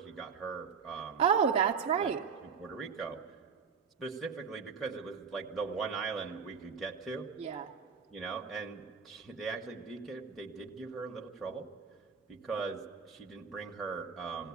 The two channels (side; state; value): left; quieter; 6.2 dB